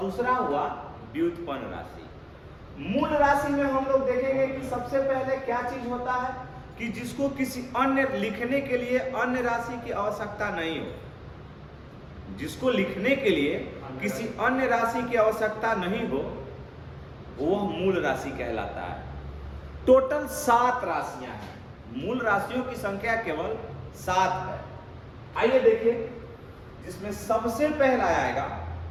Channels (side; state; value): both; identical; correlation 1.00